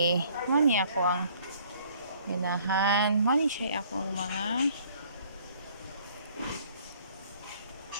Mani ako ang ganahan. Mani siya ako ang mga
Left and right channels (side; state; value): both; inverted; correlation -0.58